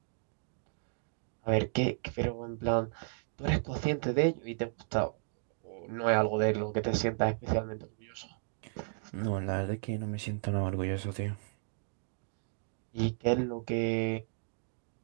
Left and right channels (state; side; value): silent; left; digital silence